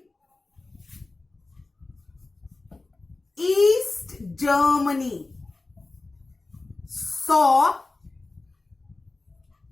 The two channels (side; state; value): right; quieter; 3.3 dB